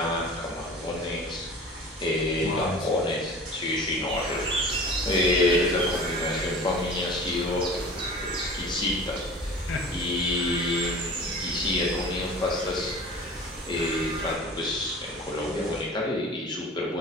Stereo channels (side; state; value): both; normal; correlation 0.40